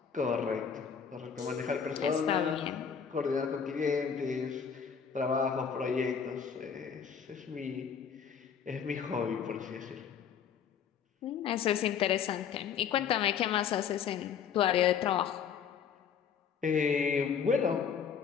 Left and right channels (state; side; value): quieter; right; 7.2 dB